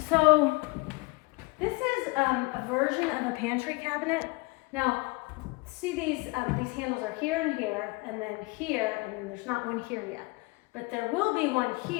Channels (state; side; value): quieter; right; 25.8 dB